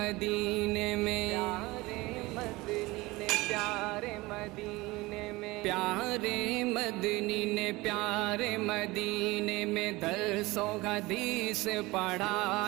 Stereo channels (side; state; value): left; quieter; 21.5 dB